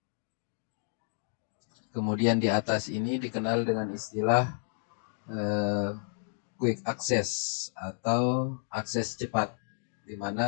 Kemudian di atas ini dikenal dengan istilah quick access atau akses cepat, di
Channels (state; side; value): silent; right; digital silence